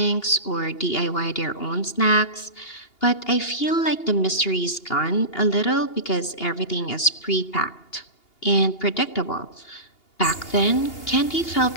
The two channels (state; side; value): late; right; 2.8 ms